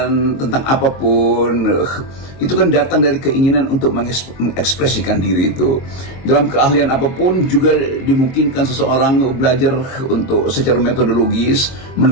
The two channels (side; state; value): right; late; 22 ms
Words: tentang apapun itu kan datang dari keinginan untuk mengekspresikan diri itu. Dalam keahlian apapun juga dimungkinkan seseorang belajar untuk secara metodologis